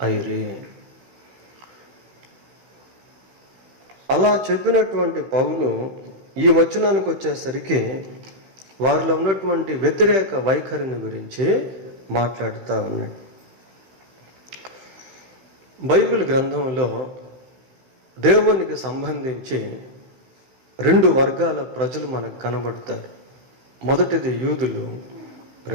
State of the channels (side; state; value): left; late; 16 ms